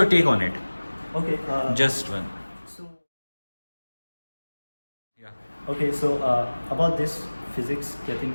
take on it? Okay. Just one. So. Yeah. Okay, so about this physics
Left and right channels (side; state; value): both; inverted; correlation -1.00